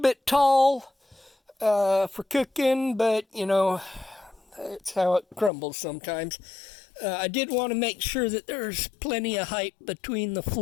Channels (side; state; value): right; drops out; at 5.5 s